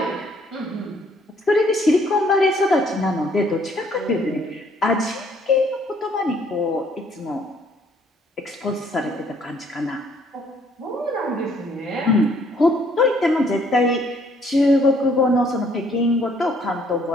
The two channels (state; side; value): normal; both; correlation 0.64